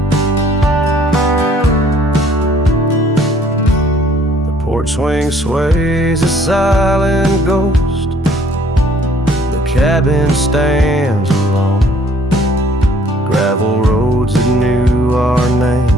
The porch swing sways a silent ghost. Cabin stands alone. Gravel roads that knew our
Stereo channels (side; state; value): both; normal; correlation 0.60